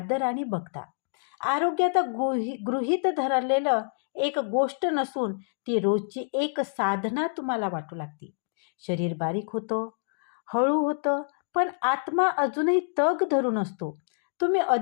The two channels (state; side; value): silent; right; digital silence